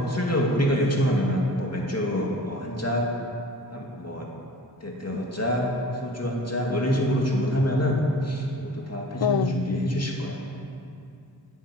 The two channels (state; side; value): normal; both; correlation 0.44